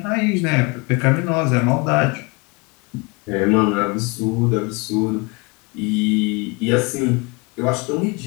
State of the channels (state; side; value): quieter; right; 28.2 dB